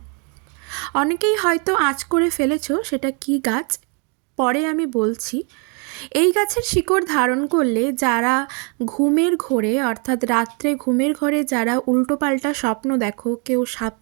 অনেকেই হয়তো আঁচ করে ফেলেছো সেটা কি গাছ, পরে আমি বলছি। এই গাছের শিকড় ধারণ করলে যারা ঘুমের ঘোরে, অর্থাৎ রাত্রে ঘুমের ঘরে যারা উল্টোপাল্টা স্বপ্ন দেখো, কেউ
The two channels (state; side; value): quieter; left; 36.4 dB